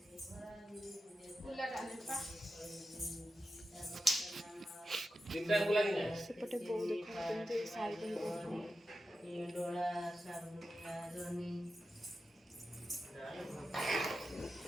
सेपटे बहु देखते साई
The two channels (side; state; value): both; normal; correlation 0.91